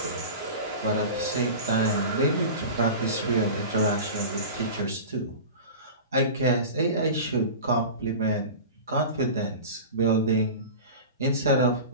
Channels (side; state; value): both; inverted; correlation -0.32